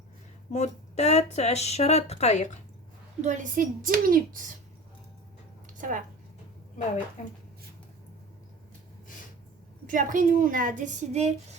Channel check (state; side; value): normal; both; correlation 0.35